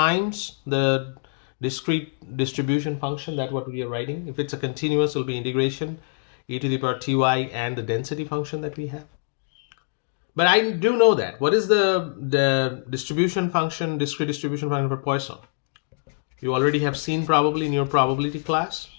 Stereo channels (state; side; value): silent; right; digital silence